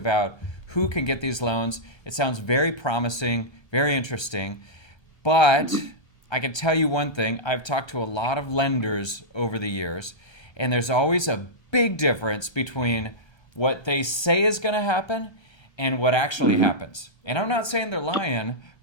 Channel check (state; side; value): late; right; 1.3 ms